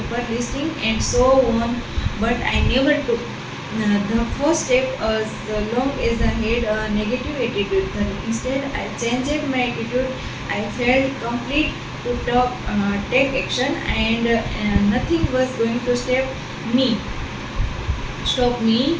listing, and so on. But I never took the first step as long as I had a negative attitude. Then instead, I changed my attitude. I felt complete to take action, and nothing was going to me stop me.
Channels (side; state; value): both; identical; correlation 1.00